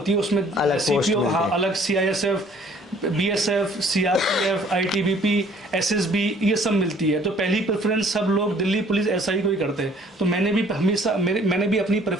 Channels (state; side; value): normal; both; correlation 0.57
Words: है उसमें CPO, हाँ, अलग CISF, BSF, CRPF, ITBP, SSB ये सब मिलती है। तो पहली प्रेफरेंस सब लोग दिल्ली पुलिस SI को ही करते हैं। तो मैंने भी हमेशा मैंने भी अपनी